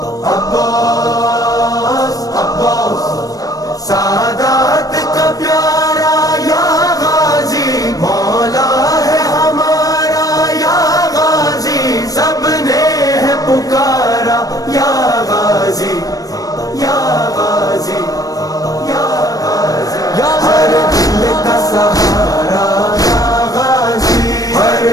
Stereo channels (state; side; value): late; right; 0.18 ms